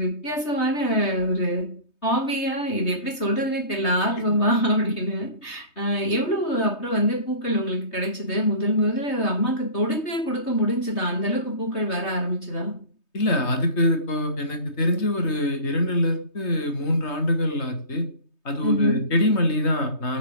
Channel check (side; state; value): right; late; 3.2 ms